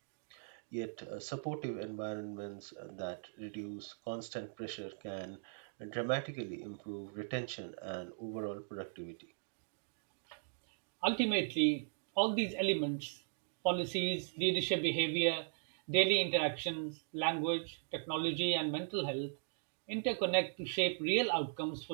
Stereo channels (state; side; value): silent; left; digital silence